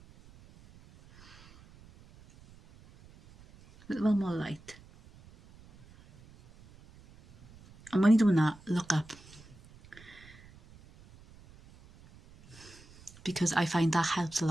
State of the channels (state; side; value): noise; right; rumble, 24 dB below the sound